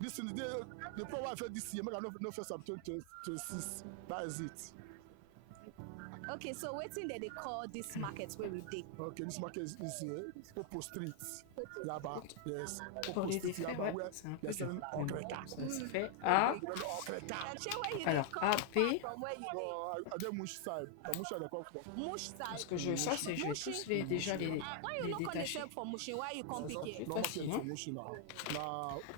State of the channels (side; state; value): both; different; correlation 0.00